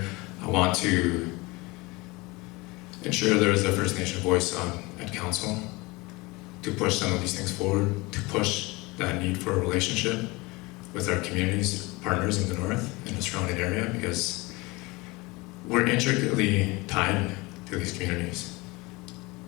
I want to ensure there is a First Nation voice at council to push some of these things forward, to push that need for a relationship with our communities, partners in the north, in the surrounding area, because we're intricately tied to these communities.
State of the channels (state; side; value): quieter; right; 23.8 dB